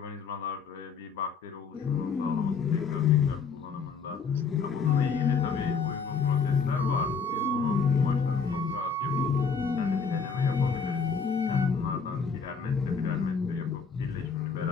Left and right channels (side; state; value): right; quieter; 5.4 dB